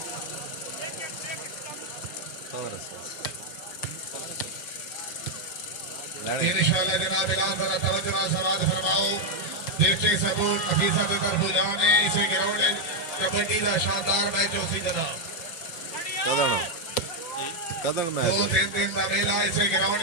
इंशाअल्लाह जनाब इलाज जरा तवज्जो समाज फरमाओ डिस्ट्रिक्ट सपोर्ट अफीसर की तरफ जाने इसे ग्राउंड कबड्डी का शानदार मैच उसी जनाब कदन मैच 2-3 दिन का मेला इसे ग्राउंड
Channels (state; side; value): late; right; 6.2 ms